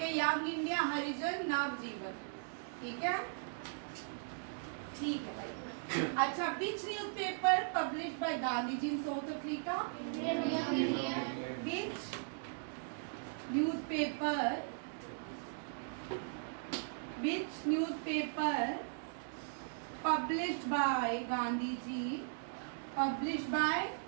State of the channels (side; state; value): left; silent; digital silence